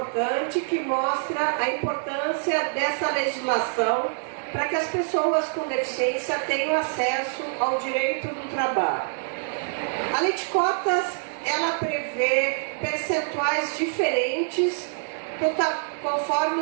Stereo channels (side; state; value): left; silent; 58 dB below the other